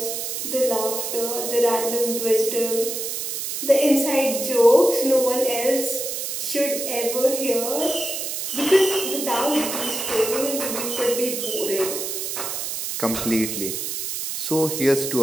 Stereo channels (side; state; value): right; noise; hiss, 4 dB below the sound